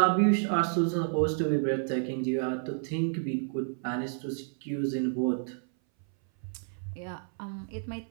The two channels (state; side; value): silent; left; 58 dB below the other